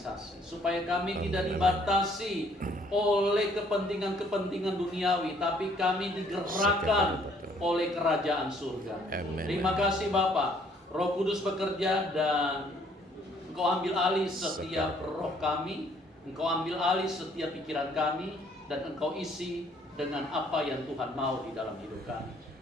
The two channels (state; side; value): normal; both; correlation 0.63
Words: supaya kami tidak dibatasi oleh kepentingan-kepentingan duniawi, tapi kami digerakkan oleh kerajaan surga. Amin. Terima kasih Bapa. Roh Kudus bekerja dan Engkau ambil alih setiap roh kami, Engkau ambil alih setiap pikiran kami, dan Engkau isi dengan apa yang Tuhan mau di dalam hidup kami.